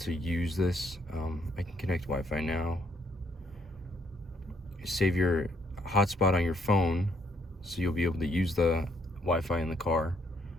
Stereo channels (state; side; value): normal; both; correlation 0.70